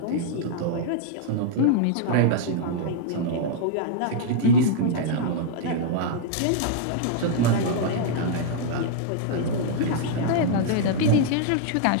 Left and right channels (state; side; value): different; both; correlation -0.01